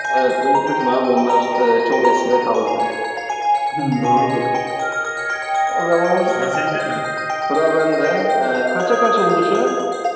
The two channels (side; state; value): both; identical; correlation 1.00